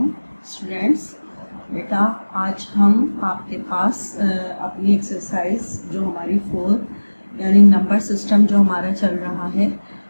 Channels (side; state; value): both; inverted; correlation -1.00